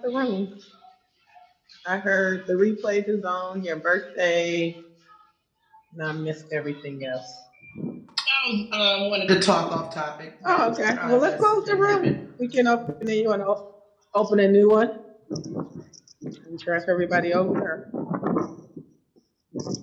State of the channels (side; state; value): both; identical; correlation 1.00